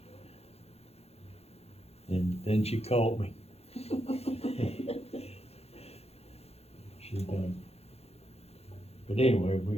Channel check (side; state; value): right; late; 0.30 ms